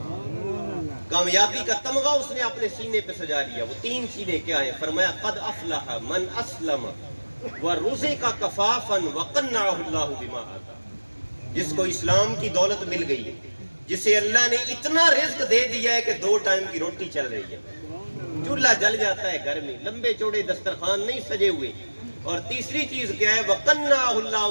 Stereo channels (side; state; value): both; inverted; correlation -1.00